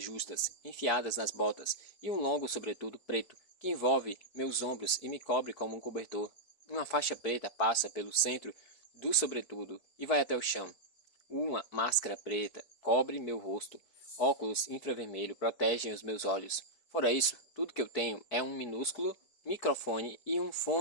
justas, enfiadas nas botas, e um longo sobretudo preto, que envolve meus ombros e me cobre como um cobertor. Uma faixa preta passa pelo centro do sobretudo e vai até o chão. Uma máscara preta cobre meu rosto. Óculos infravermelho protegem os meus olhos. Fora isso, tudo que eu tenho é um minúsculo microfone e um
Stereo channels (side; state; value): right; late; 4.6 ms